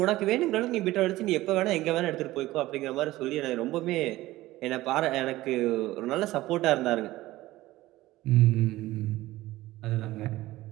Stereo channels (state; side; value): quieter; left; 17.2 dB